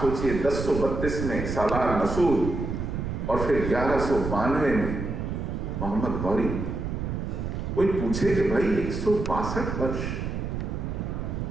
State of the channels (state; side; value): noise; right; rumble, 3 dB below the sound